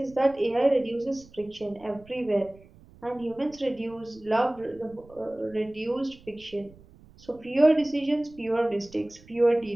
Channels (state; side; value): noise; right; rumble, 24 dB below the sound